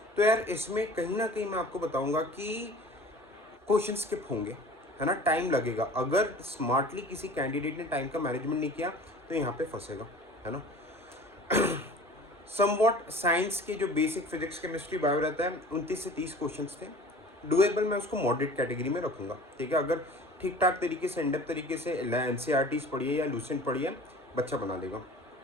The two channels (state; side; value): normal; both; correlation 0.43